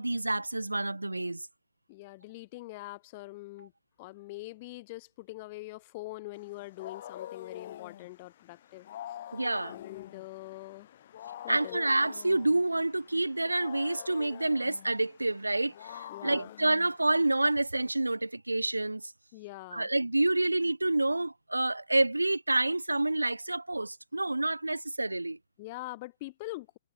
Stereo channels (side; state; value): both; inverted; correlation -0.97